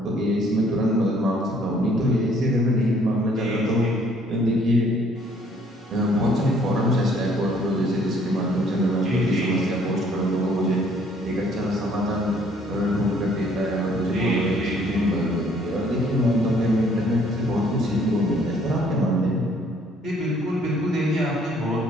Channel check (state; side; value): normal; both; correlation 0.62